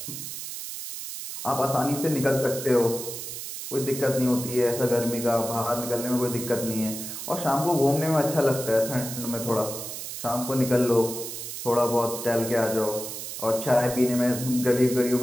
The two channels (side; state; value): right; noise; hiss, 8 dB below the sound